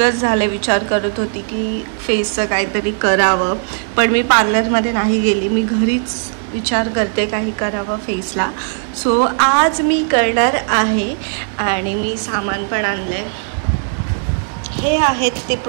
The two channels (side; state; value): left; silent; 57 dB below the other